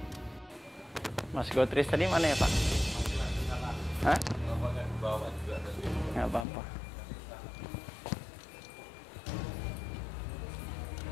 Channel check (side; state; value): right; drops out; at 6.5 s